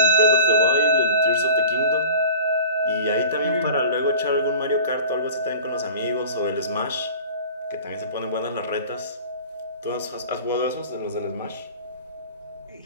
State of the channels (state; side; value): inverted; both; correlation -0.41